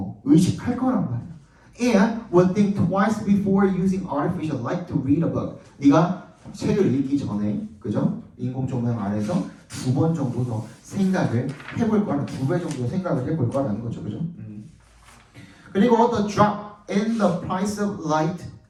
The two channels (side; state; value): both; identical; correlation 1.00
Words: 의식할 거란 말이야. And would think twice before using artificial light to read a book. 네가 책을 읽기 전에, 그죠? 인공 조명 아래서 2번 정도 더 생각을 해볼 거라는 2배 정도 생각을 해볼 거라는 거죠, 그죠? 그리고 the drop in the price of light